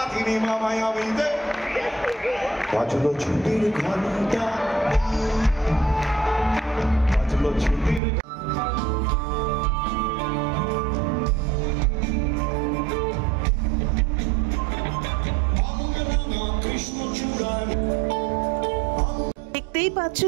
মামায় আমি দে বাজলো ছুটির ঘন্টা, বাজলো ছুটির। দেখতেই পাচ্ছ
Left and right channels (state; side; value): drops out; left; at 8.0 s